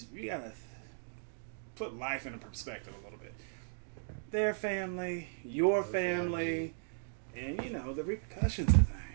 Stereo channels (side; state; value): left; silent; digital silence